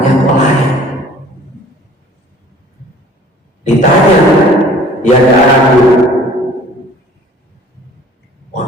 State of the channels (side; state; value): both; normal; correlation 0.51